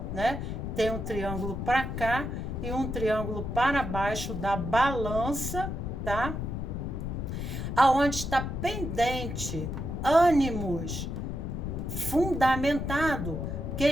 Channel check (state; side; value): noise; left; rumble, 4 dB below the sound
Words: né? Tem um triângulo para cá e um triângulo para baixo da balança, tá? Aonde está pendente ânimos fundamentado,